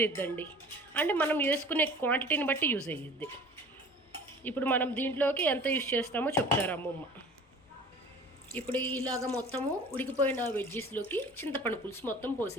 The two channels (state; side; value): normal; both; correlation 0.44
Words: అవుతుందండి. అంటే మనం వేసుకునే క్వాంటిటీని బట్టి యూజ్ అయ్యిద్ది. ఇప్పుడు మనం దీంట్లోకి ఎంత యూజ్ చేస్తామో చెప్తారు అమ్మమ్మ. ఇప్పుడు ఇలాగ మొత్తము ఉడికిపోయిన వెజ్జెస్లోకి చింతపండు పులుసు మొత్తం